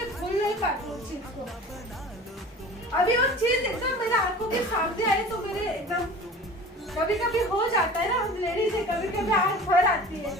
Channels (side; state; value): both; normal; correlation 0.40